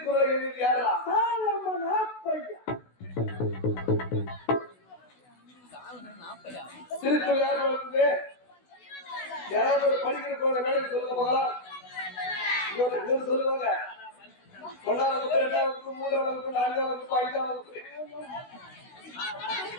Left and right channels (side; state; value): right; late; 16 ms